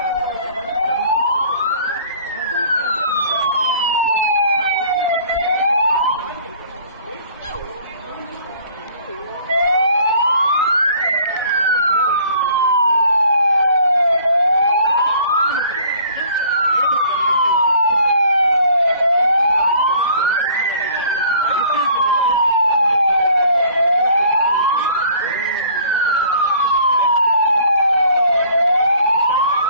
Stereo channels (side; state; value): both; inverted; correlation -0.54